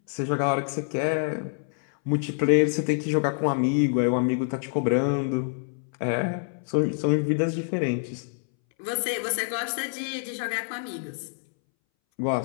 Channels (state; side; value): silent; right; 61 dB below the other